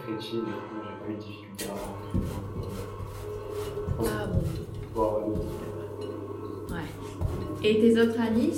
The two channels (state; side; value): identical; both; correlation 1.00